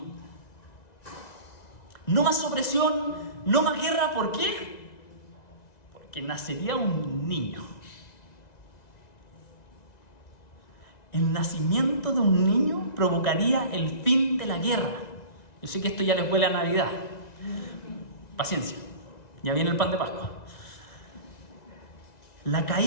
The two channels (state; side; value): late; right; 1.9 ms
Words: No más opresión, no más guerra. ¿Por qué? Porque nacería un niño. El nacimiento de un niño provocaría el fin de la guerra. Yo sé que esto ya les huele a Navidad. Paciencia. Ya viene el pan de Pascua. La